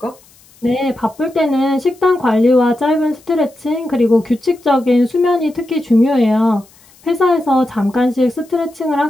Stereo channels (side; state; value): left; noise; hiss, 28 dB below the sound